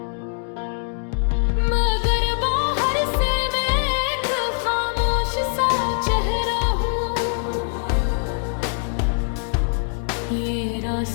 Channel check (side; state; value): right; silent; 64 dB below the other